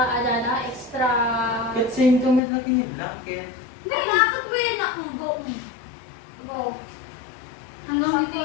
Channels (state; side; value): drops out; right; at 2.4 s